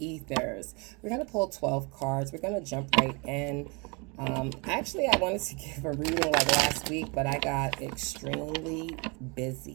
We're going to pull 12 cards. We're going to jump right in. Actually, I wanted to give a reading like last week, but I got extremely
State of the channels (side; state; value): left; quieter; 30.4 dB